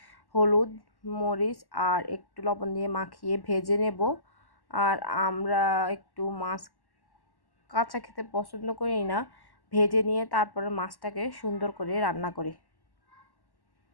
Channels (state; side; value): late; right; 1.1 ms